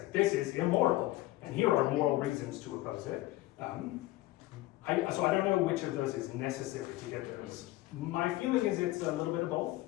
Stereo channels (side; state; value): right; quieter; 17.7 dB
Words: this is immoral, and here are moral reasons to oppose it. So I don't know which of those is necessary to get those. My feeling is it's a little bit of both,